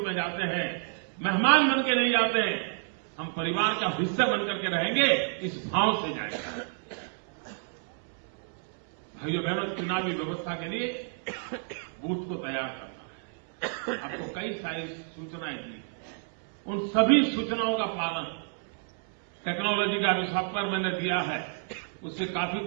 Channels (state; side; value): silent; left; 58 dB below the other